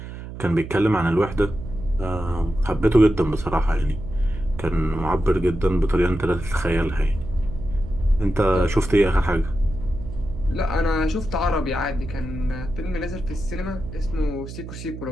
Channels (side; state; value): right; noise; hum, 11 dB below the sound